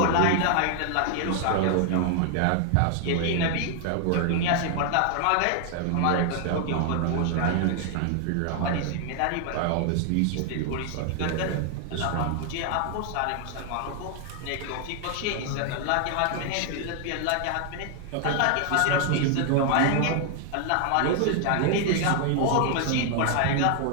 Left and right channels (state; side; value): different; both; correlation 0.00